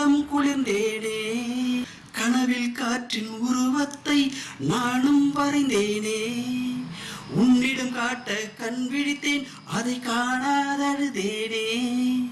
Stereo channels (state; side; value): identical; both; correlation 1.00